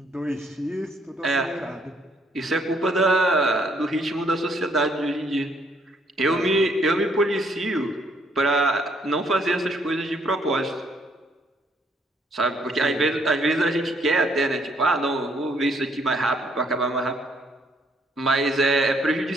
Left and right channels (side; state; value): both; normal; correlation 0.68